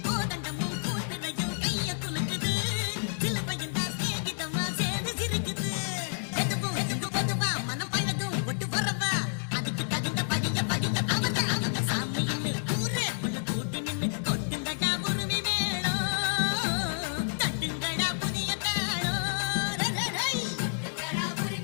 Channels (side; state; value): right; silent; 58 dB below the other